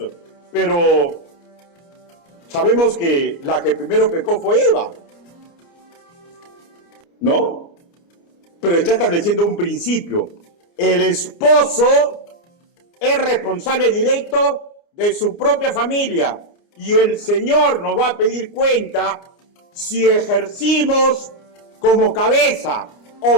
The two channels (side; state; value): right; late; 29 ms